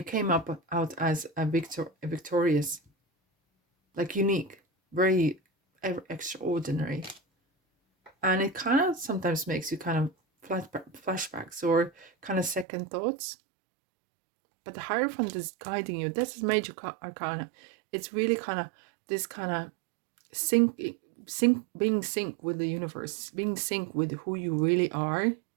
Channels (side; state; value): left; drops out; at 12.7 s